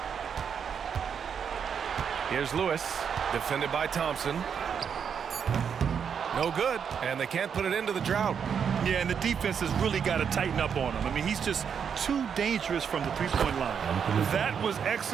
Here's Lewis, defended by Thompson. No good, and they can't put it into the drought. Yeah, and the defense has really got to tighten up on him. I mean, he's just too dangerous from the three-point line. That was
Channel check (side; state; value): left; quieter; 7.3 dB